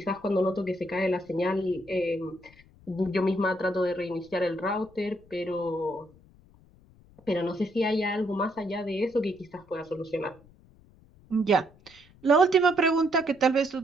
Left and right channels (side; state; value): left; noise; rumble, 27 dB below the sound